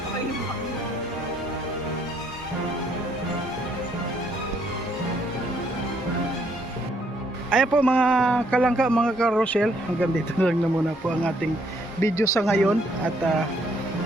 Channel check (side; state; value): both; normal; correlation 0.69